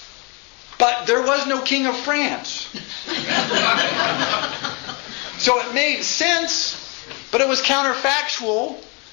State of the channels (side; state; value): right; quieter; 31.6 dB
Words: but there was no king of France. So it made sense, but it was counterfactual,